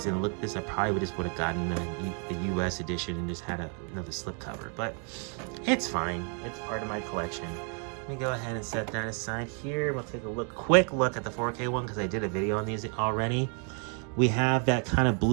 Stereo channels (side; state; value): left; quieter; 39.7 dB